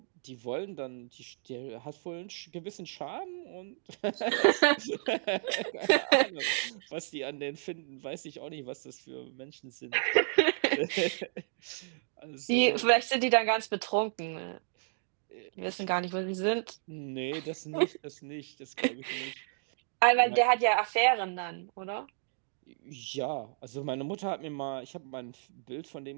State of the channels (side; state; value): left; silent; digital silence